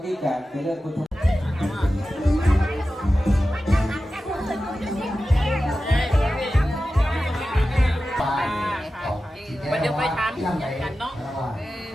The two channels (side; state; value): both; normal; correlation 0.94